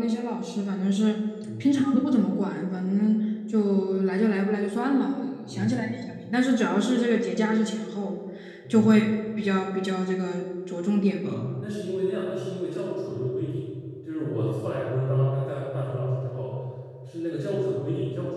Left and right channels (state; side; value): identical; both; correlation 1.00